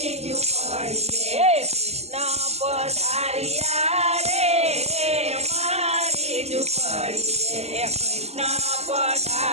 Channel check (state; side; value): late; left; 0.31 ms